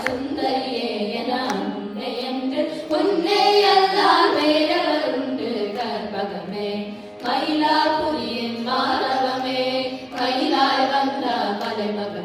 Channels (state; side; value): identical; both; correlation 1.00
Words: சுந்தரியே என அன்னை என்று உன்னை அல்லால் வேறவர் உண்டு கற்பகமே மயிலாபுரியின் மாதவமே மயிலாய் வந்த